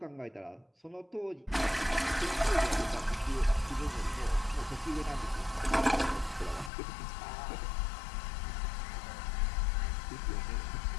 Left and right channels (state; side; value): drops out; right; at 6.7 s